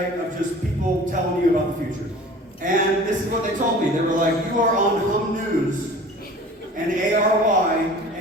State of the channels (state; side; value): normal; both; correlation 0.43